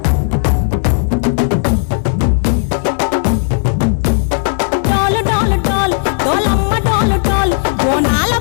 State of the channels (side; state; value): right; silent; digital silence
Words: డోలు డోలు డోల్ డోలమ్మ డోలు డోల్, బోనాల